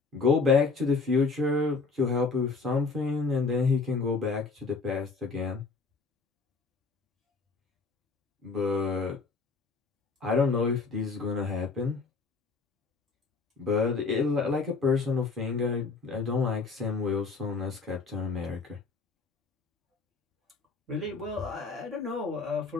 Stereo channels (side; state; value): right; quieter; 4.3 dB